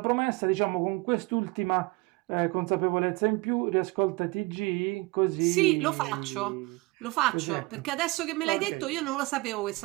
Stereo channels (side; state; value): left; quieter; 24.4 dB